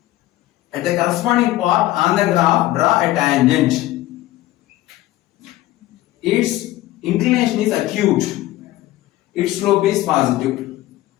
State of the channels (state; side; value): quieter; right; 16.2 dB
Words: At the corresponding part on the graph, draw a tangent. Its inclination is acute. Its slope is positive.